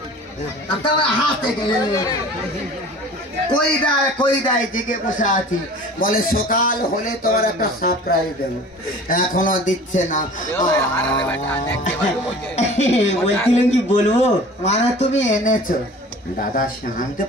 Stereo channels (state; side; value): normal; both; correlation 0.43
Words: তোমার হাত থেকে কই দেয়, কই দেয় জিজ্ঞে বসে আছি। বলে সকাল হলে তোমার একটা সারপ্রাইজ দেবো, এখনো দিচ্ছে না। বলছিলেন কি বলবো? মানে তুমি এনেছো দাদা, সে আনতে